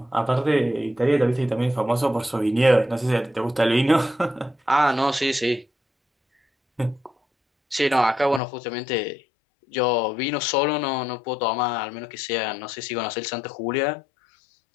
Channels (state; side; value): drops out; right; at 8.4 s